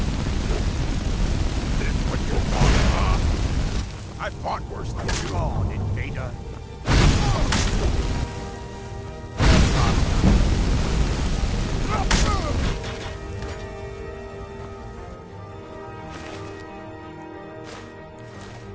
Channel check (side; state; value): both; identical; correlation 1.00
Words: This what you want, huh? I fought worse than you. Come on, invader.